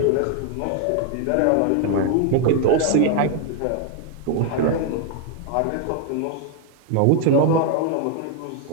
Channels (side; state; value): both; different; correlation 0.00